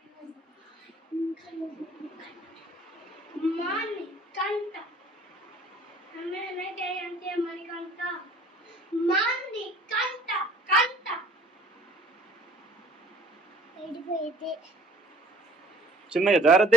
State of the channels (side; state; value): both; normal; correlation 0.56